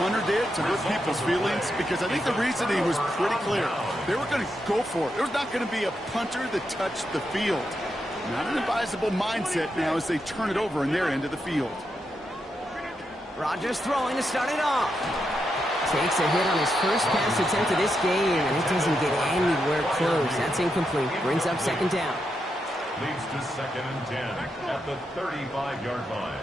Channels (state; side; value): normal; both; correlation 0.84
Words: did to hurt people's feelings, because I think the reasoning was pretty clear. They were going to go for it. There's not going to be a punter that touched the field. Not an advisable mindset now as they turn it over in their end of the field. Rodgers throwing to start it off. Takes a hit on his first pass attempt of this game, and it doesn't get anywhere close. That's incomplete. Brings up 2nd down. Leads to 2nd and 10 at the 35-yard line.